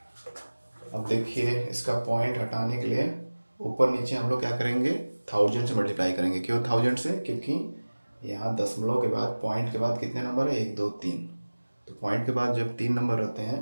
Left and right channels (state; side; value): inverted; both; correlation -1.00